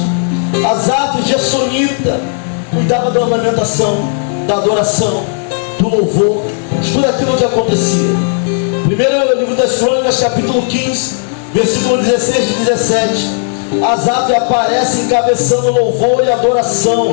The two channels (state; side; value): silent; right; digital silence